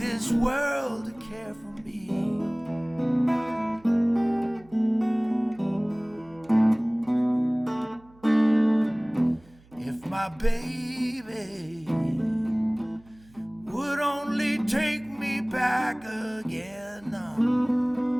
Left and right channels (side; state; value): right; noise; hum, 27 dB below the sound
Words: world to care for me. If my baby would only take me back again,